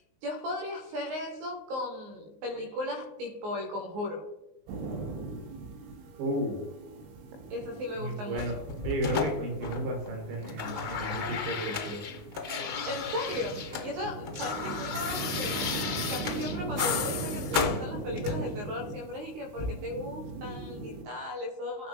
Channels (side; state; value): left; late; 19 ms